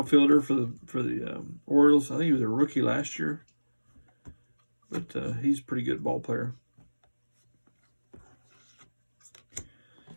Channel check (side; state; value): both; inverted; correlation -1.00